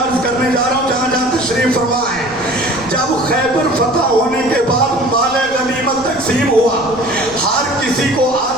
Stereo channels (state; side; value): noise; left; rumble, 20 dB below the sound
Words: کرنے جا رہا ہوں جہاں جہاں تشریف فرما ہے. جب خیبر فتح ہونے کے بعد مال غنیمت تقسیم ہوا, ہر کسی کو